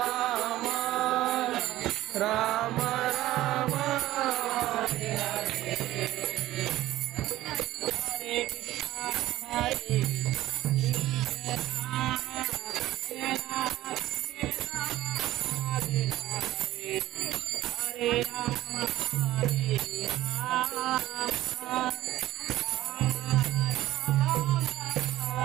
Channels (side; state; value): left; quieter; 15.4 dB